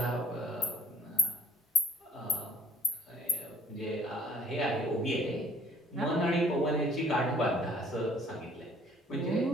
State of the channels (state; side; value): normal; both; correlation 0.59